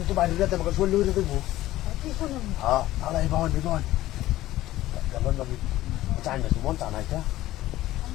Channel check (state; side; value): quieter; right; 15.5 dB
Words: তো বাড়ি যেতে আমাকে চলে উঠে দেবো কি শুনুন হ্যাঁ তাহলে এই বাহন কেমন আমি চাই না মন তা নাই